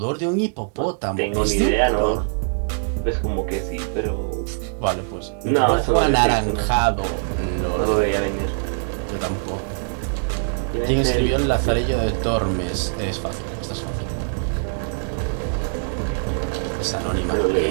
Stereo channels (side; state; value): left; silent; 64 dB below the other